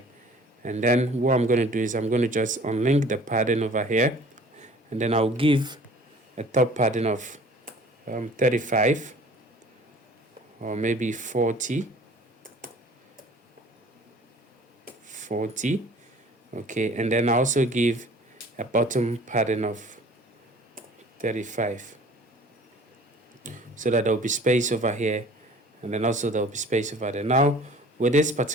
And then what I'm going to do is I'm going to just unlink the padding over here, and then I'll give a top padding of 35 or maybe 40, okay. And then I also give a bottom padding of 35 so that there will be space over here, and then also there will be space over there. Now with this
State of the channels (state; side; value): normal; both; correlation 0.49